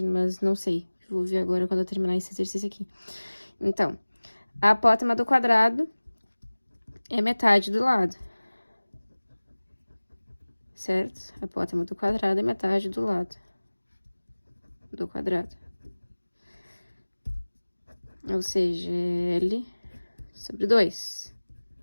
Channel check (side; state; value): both; inverted; correlation -1.00